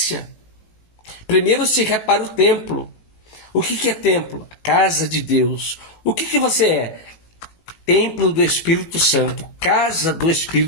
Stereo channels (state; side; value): late; right; 18 ms